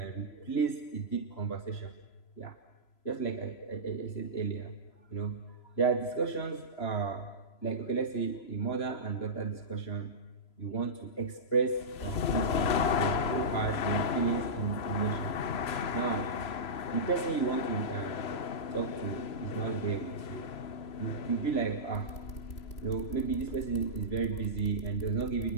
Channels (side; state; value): right; late; 3.0 ms